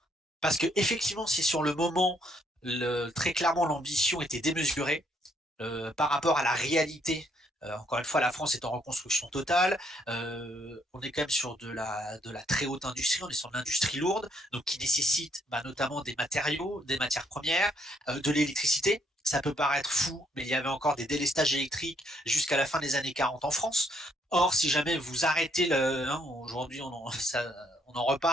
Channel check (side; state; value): both; normal; correlation 0.71